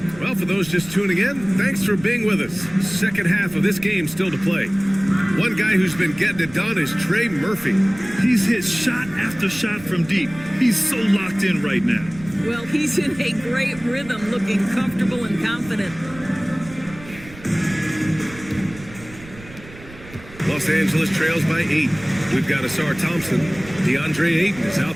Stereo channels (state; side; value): noise; right; rumble, 18 dB below the sound